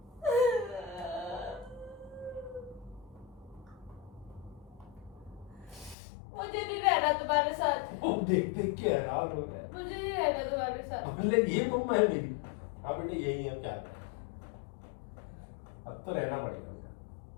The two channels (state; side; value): drops out; right; at 6.0 s